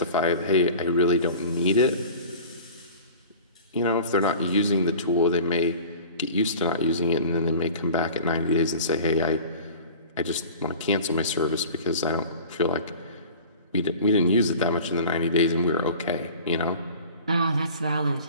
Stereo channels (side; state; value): both; inverted; correlation -0.41